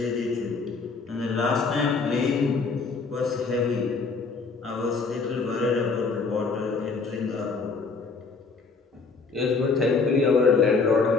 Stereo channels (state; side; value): quieter; right; 4.5 dB